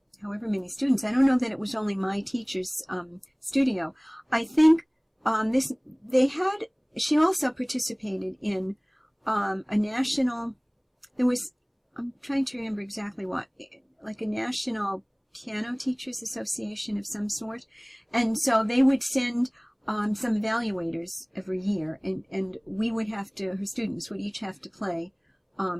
however many students. I don't know that it was only my teacher's, studio. I think, she also participated in a national, I'm trying to remember exactly what, like a national piano teachers association of some sort. And so they would send some evaluators every year, and we would her students would each have to play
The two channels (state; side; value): identical; both; correlation 1.00